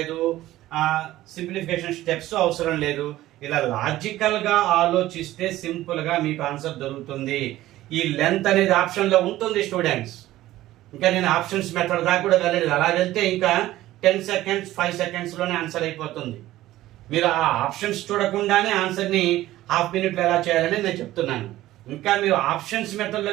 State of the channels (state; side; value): quieter; left; 15.4 dB